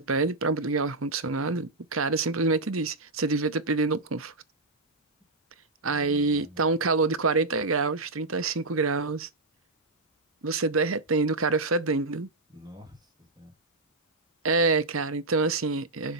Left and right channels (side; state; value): left; quieter; 3.2 dB